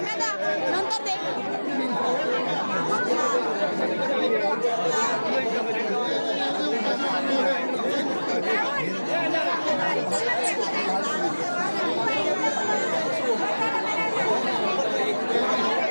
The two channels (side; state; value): both; inverted; correlation -1.00